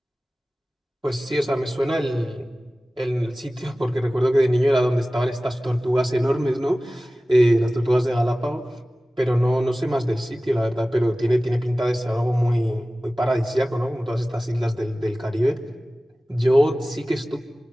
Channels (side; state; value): both; normal; correlation 0.97